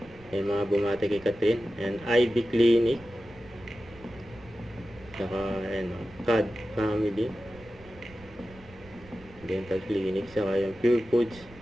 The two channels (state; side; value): noise; right; rumble, 22 dB below the sound